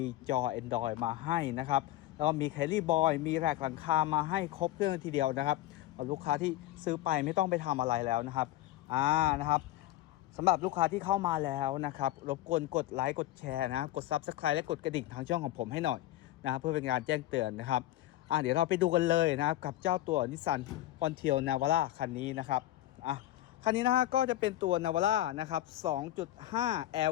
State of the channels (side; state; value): right; quieter; 14.7 dB